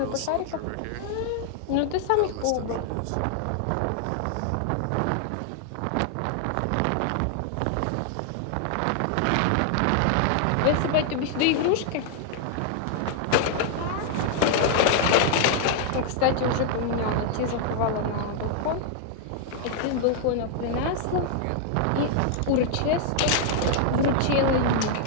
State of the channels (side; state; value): both; different; correlation 0.00